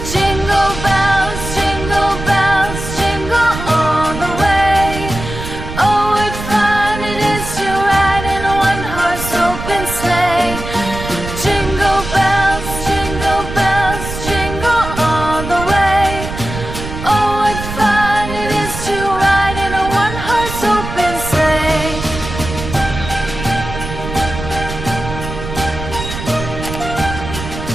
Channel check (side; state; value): right; noise; rumble, 8 dB below the sound